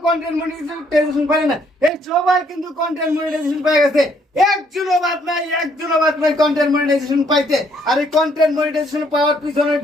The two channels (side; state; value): both; normal; correlation 0.68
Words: কন্টেন্ট মনিটাইজেশন পাইলেন না। এই সবাই কিন্তু কন্টেন্ট মনিটাইজেশন পেয়ে গেছে, একজনও বাদ নাই কন্টেন্ট মনিটাইজেশন পাইতে। আর এই কন্টেন্ট মনিটাইজেশন পাওয়ার পিছনের